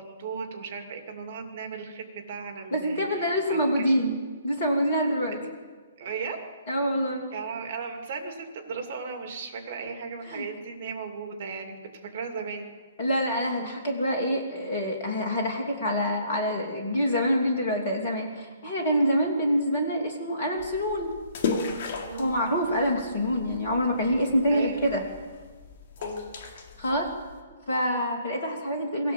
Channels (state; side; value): inverted; both; correlation -0.63